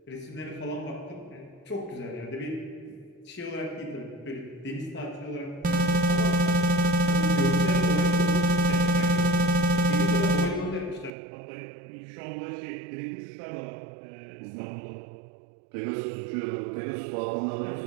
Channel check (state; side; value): drops out; left; at 11.1 s